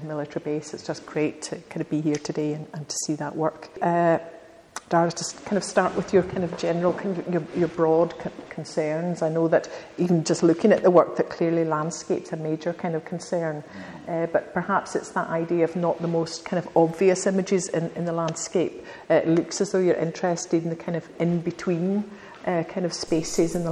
military base. It's just great to kind of be here today and to see that work. Dara, just kind of start with your kind of general, kind of your broad concerns. I know that even just looking at the work, that clearly landscape's a major kind of concern, but perhaps it's that idea of not the most kind of obvious images in the landscape. It looks as though you're interested in the kind of in-between kind of spaces in the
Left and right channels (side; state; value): both; identical; correlation 1.00